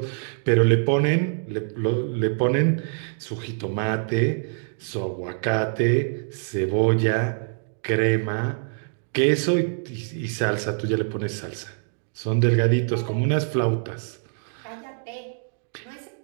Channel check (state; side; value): silent; left; digital silence